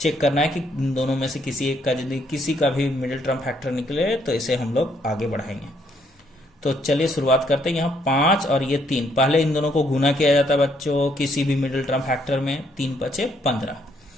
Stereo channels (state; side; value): normal; both; correlation 0.70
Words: करना है कि इन दोनों में से किसी एक का यदि किसी का भी मिडिल टर्म फैक्टर निकले तो इसे हम लोग आगे बढ़ाएंगे। तो चलिए शुरुआत करते हैं। यहाँ 5 और ये 3, पहले इन दोनों को गुना किया जाता है बच्चों किसी भी मिडिल टर्म फैक्टर में, 3 बचे 15।